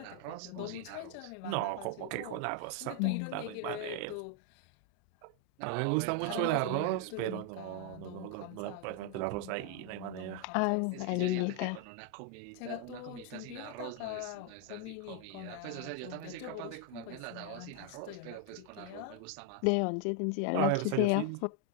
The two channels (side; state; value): both; different; correlation 0.01